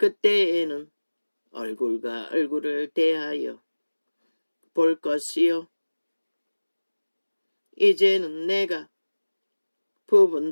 얼굴과 얼굴을 대하여 볼 것이요. 이제는 내가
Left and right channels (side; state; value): both; inverted; correlation -1.00